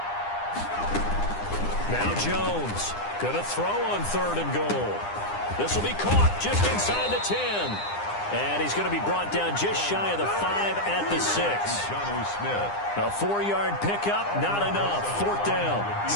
Now Jones. Going to throw on 3rd and goal. This will be caught just inside the 10. And he's going to be brought down just shy of the 5 at the 6. A 4-yard pickup, not enough. 4th down.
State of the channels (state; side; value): late; right; 9.8 ms